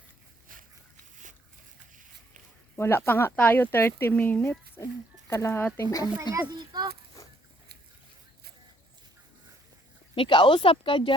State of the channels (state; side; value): normal; both; correlation 0.66